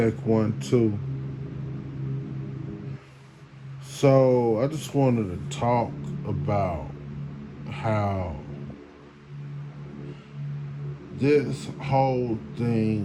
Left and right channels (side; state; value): both; identical; correlation 1.00